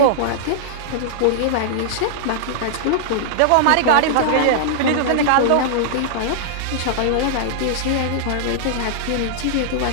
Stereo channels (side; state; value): both; different; correlation -0.01